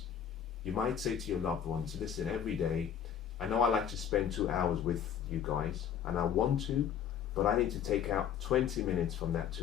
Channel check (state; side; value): quieter; right; 8.7 dB